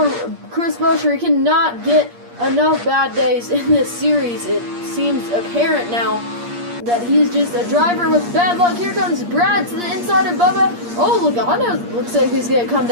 Chris Buescher. He cannot get enough bad days in this series. It seems apparent now that he's just a driver with bad luck. Here comes Brad to the inside of Bubba. Oh, Logano looks like he's going to come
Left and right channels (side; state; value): left; late; 8.5 ms